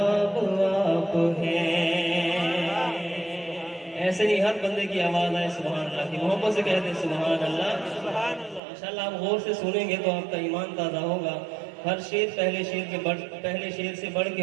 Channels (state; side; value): drops out; left; at 8.6 s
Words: آپ ہیں۔ ایسے نہیں ہر بندے کی آواز آئے سبحان اللہ کی، محبت سے کہتے ہیں سبحان اللہ۔ انشاءاللہ آپ غور سے سنیں گے تو آپ کا ایمان تازہ ہوگا۔ ہر شعر پہلے شعر سے بڑھ کے